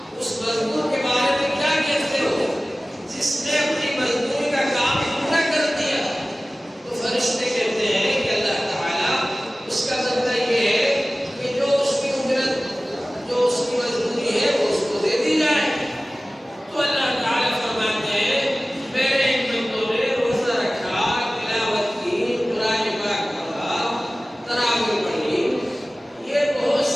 کے بارے میں کیا کہتے ہو جس نے اپنی مزدوری کا کام پورا کر دیا؟ تو فرشتے کہتے ہیں کہ اللہ تعالیٰ اس کا بدلہ یہ ہے کہ جو اس کی اجرت، جو اس کی مزدوری ہے وہ اس کو دے دی جائے۔ تو اللہ تعالیٰ فرماتے ہیں میرے ان بندوں نے روزہ رکھا، تلاوت کی، قرآن پاک پڑھا، تراویح پڑھی، یہ بہت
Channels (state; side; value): normal; both; correlation 0.97